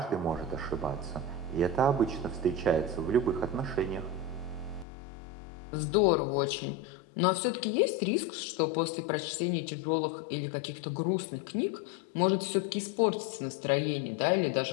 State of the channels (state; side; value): drops out; right; at 4.9 s